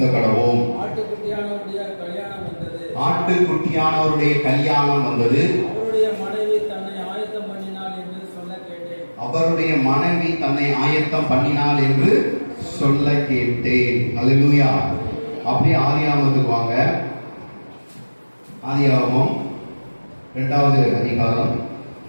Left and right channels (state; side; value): inverted; both; correlation -1.00